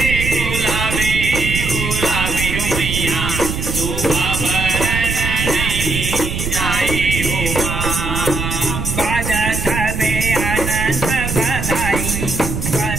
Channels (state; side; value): noise; right; rumble, 4 dB below the sound